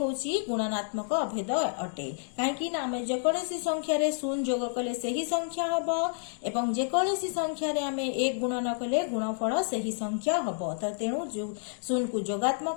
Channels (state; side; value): silent; right; digital silence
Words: गुणनात्मक अभेद अटे काहेकि ना हमें जेकोसी संख्या रे 0 जोग कले सही संख्या हबो एवं जेकोसी संख्या रे हमें 1 गुणन कले गुणफल सही संख्या हबो त तेनु 0 को